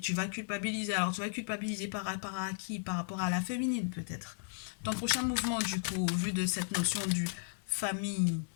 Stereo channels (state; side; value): silent; right; digital silence